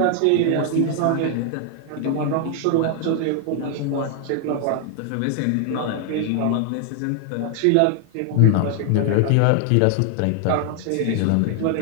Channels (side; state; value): both; different; correlation 0.00